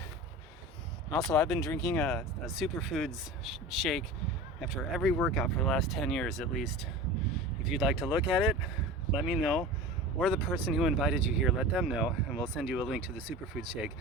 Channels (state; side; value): normal; both; correlation 0.33